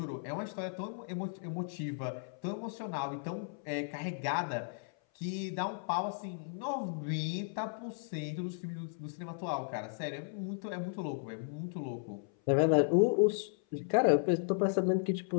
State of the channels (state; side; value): silent; right; 54 dB below the other